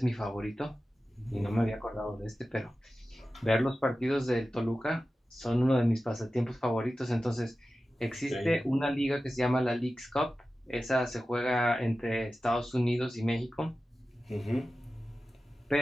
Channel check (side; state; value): both; normal; correlation 0.94